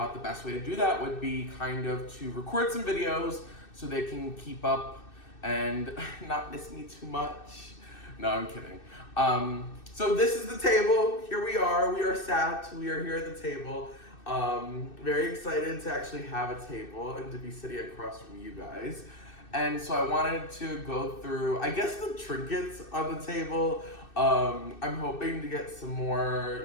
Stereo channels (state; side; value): late; right; 2.6 ms